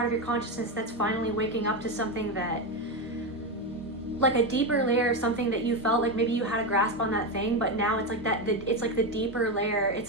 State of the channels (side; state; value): both; normal; correlation 0.12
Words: of your consciousness that's finally waking up to something that, like a deeper layer, something that you felt like maybe you had a grasp on that thing, but now it's like that, it's like the deeper layer.